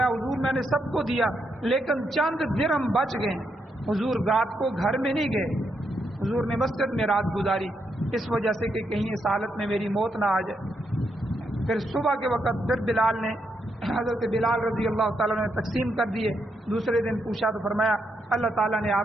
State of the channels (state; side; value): normal; both; correlation 0.80